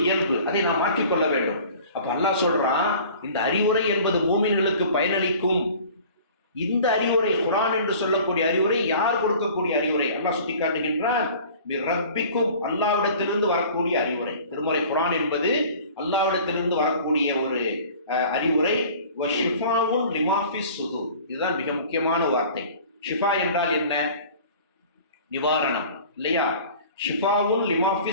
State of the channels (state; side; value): inverted; both; correlation -0.45